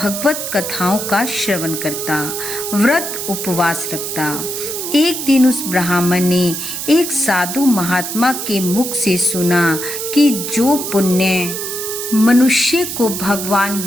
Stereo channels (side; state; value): right; noise; hiss, 5 dB below the sound